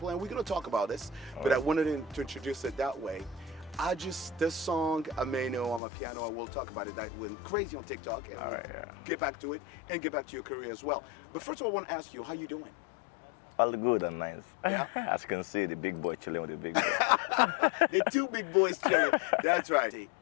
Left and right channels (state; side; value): drops out; right; at 5.8 s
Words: and we're going to talk about this, but I wanted to introduce it that way. This song, Ameno Amapiano, and we'll talk about it. That went crazy on TikTok, and we'll get back to it and get back to your career as well. But first of all, I want to ask you, how you doing? All good and nice. Yeah. As you can see, the big boy chilling with the big boy. The two big boys chilling. That's right.